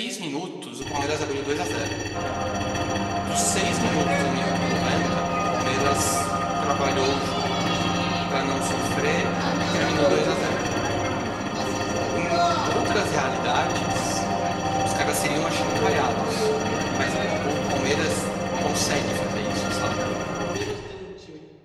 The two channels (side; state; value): both; identical; correlation 1.00